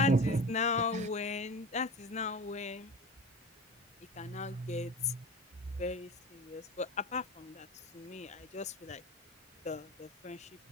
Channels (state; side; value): normal; both; correlation 0.33